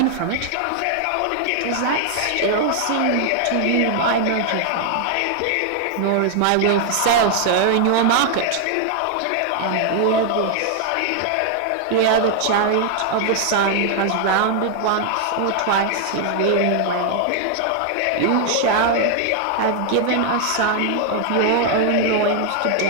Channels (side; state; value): both; different; correlation 0.00